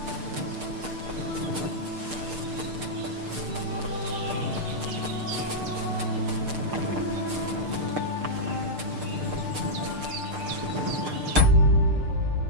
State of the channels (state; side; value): late; left; 6.7 ms